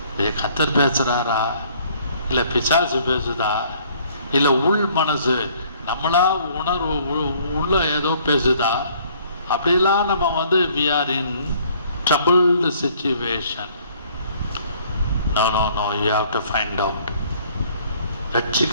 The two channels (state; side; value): inverted; both; correlation -0.59